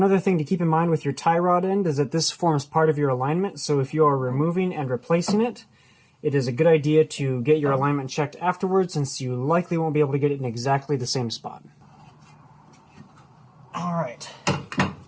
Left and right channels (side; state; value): both; identical; correlation 1.00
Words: other thing to keep in mind with your tie rod end is that this forms part of your alignment, so if you are removing and replacing it, it is a good idea to get your alignment checked afterwards, since you likely won't be able to get it in exactly the same spot. Alright,